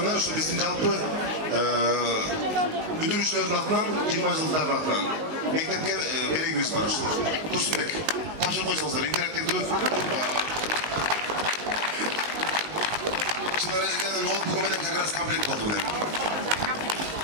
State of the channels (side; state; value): left; late; 19 ms